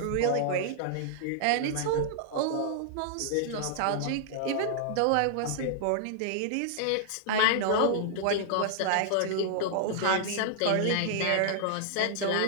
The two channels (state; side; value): different; both; correlation -0.01